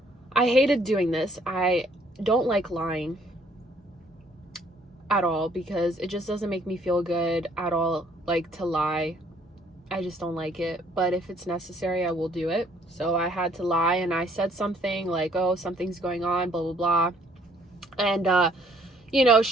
hated doing this. I don't like lying at all because it just doesn't make me feel good at all, like, to lie. I just don't like it. But if it's necessary, I will do it. So I had to lie, and I said something like, oh, something's going on, blah, blah, blah. And, you know,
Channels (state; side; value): normal; both; correlation 0.63